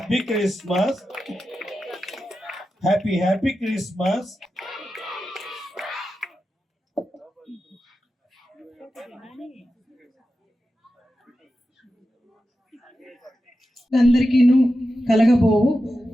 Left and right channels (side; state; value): both; normal; correlation 0.91